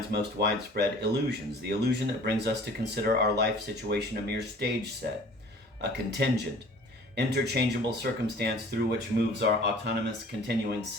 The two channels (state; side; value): normal; both; correlation 0.48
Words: most widespread illusions, the illusion that brings us to consider our life situation a mere stage set, a contingent, interchangeable circumstance through which moves our autonomous continuing